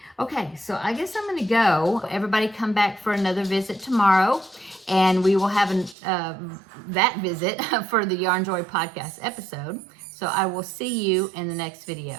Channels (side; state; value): left; drops out; at 6.0 s